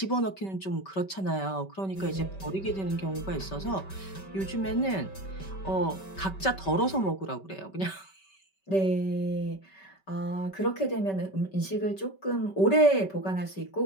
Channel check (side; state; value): right; late; 5.2 ms